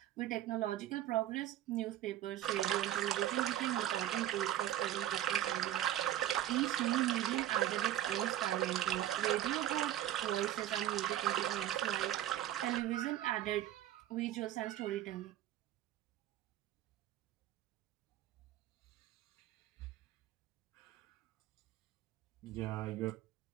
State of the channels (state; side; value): quieter; left; 12.8 dB